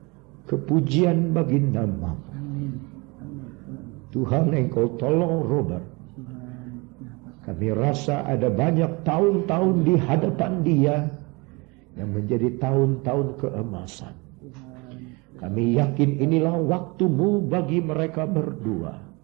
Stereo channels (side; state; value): left; quieter; 27.1 dB